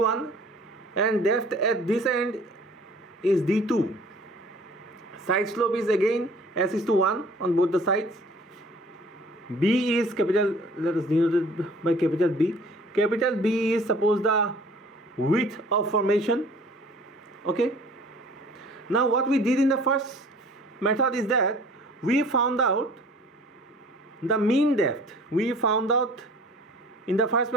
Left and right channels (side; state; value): both; normal; correlation 0.50